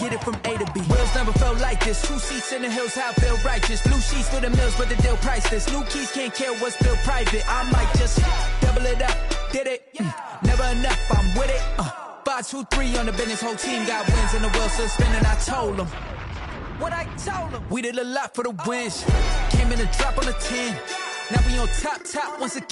it from A to B. Wheels never felt like this. 2 seats in the hills, how I feel righteous. Blue sheets for the mills, but the deal priceless. New keys can't care what's still private. I might just double it up. Did it? Never enough, I'm with it. 5, 2, 3 on the business. Whole team got wins and the wheels still spinning. I told them what I told them. We did a lot for the wins. Came in and drop on the 10. Now we on top once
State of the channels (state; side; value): identical; both; correlation 1.00